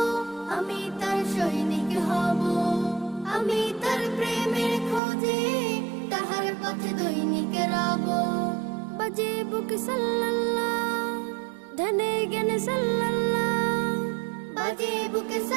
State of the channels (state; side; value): drops out; left; at 5.0 s